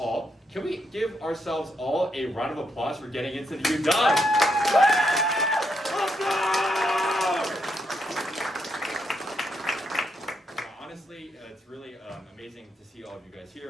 can we give ourselves all a round of applause for getting into the UW? Honestly, it's really amazing to see all of you guys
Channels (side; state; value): both; normal; correlation 0.79